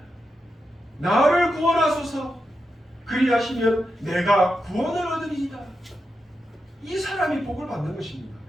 나를 구원하소서. 그리하시면 내가 구원을 얻으리이다. 이 사람이 복을 받는 것입니다.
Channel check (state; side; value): normal; both; correlation 0.87